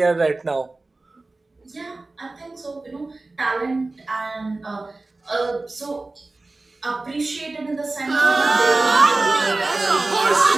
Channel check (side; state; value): left; quieter; 3.2 dB